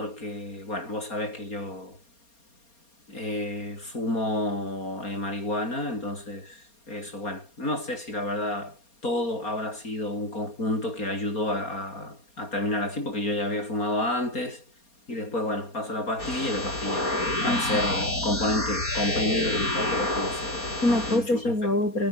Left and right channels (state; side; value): late; right; 4.3 ms